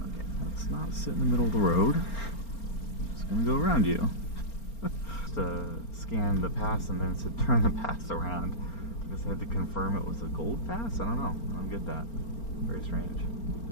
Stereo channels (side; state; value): right; late; 4.4 ms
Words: Okay, let's not sit in the middle of the road. Just gonna go around you. Just scan the pass and then it said turn the pass around. I guess I had to confirm it was a gold pass? I don't know. I don't get that. Very strange.